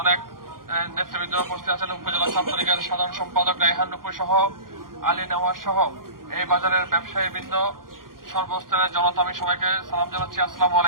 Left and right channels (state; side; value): late; left; 0.91 ms